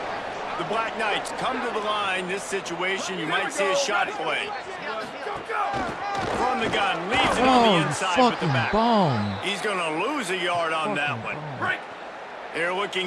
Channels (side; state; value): both; identical; correlation 1.00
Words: The Black Knights come to the line. This situation, you might see a shot play. From the gun, leaves it on the inside with the back. He's going to lose a yard on that one. They're